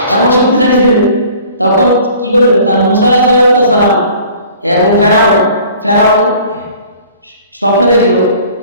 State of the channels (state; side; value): inverted; both; correlation -0.50